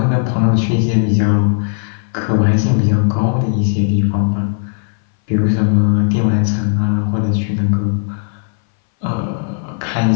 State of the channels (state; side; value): silent; right; 62 dB below the other